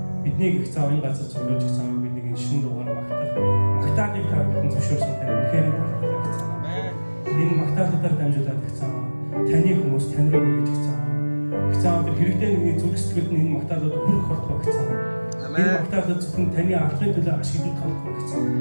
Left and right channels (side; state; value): both; inverted; correlation -1.00